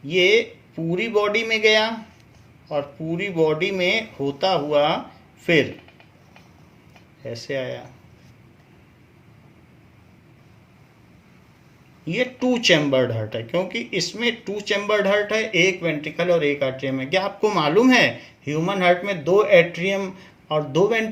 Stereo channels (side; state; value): both; identical; correlation 1.00